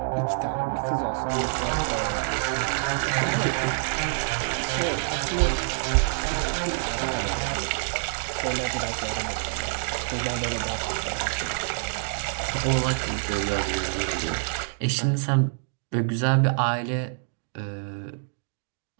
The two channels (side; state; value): left; silent; digital silence